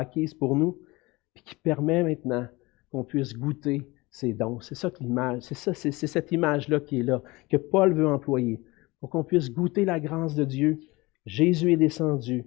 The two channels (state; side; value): quieter; right; 22.4 dB